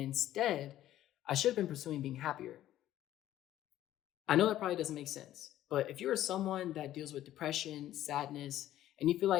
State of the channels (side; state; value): right; quieter; 13.2 dB